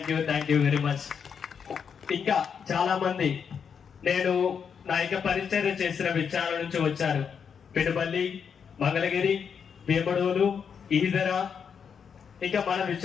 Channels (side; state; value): right; quieter; 6.9 dB